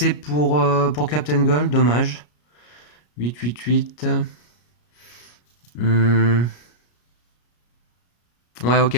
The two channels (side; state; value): right; late; 33 ms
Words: pour Captain Gold, dommage. 8, 8, 8. Ouais,